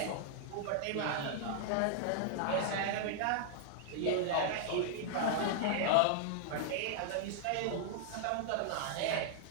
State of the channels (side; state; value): both; different; correlation -0.01